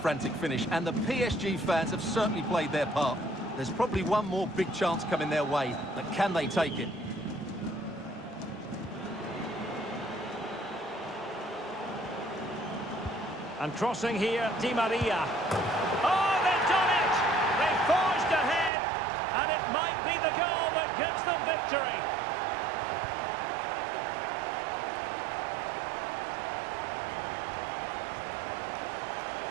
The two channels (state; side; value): drops out; left; at 18.7 s